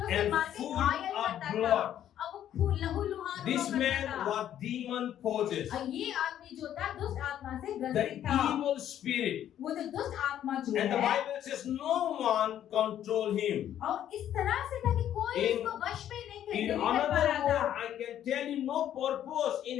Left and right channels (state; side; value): quieter; right; 10.9 dB